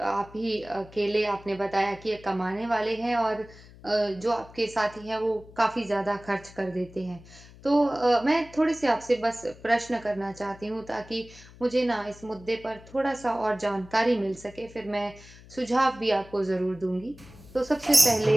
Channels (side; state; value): left; noise; hum, 21 dB below the sound